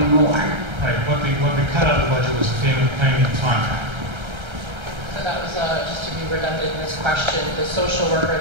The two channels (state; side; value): late; left; 1.3 ms